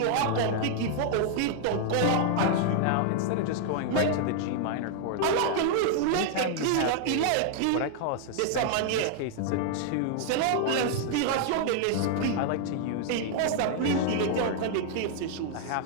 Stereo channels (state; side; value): different; both; correlation 0.00